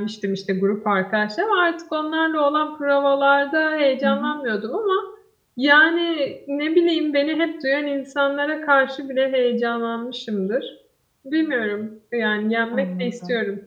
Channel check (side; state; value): both; identical; correlation 1.00